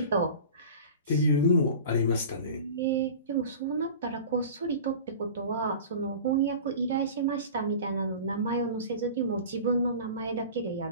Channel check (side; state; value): both; inverted; correlation -0.37